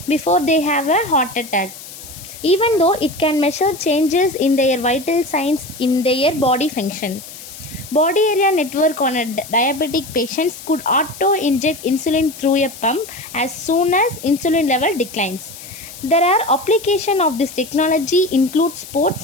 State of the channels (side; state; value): left; noise; hiss, 15 dB below the sound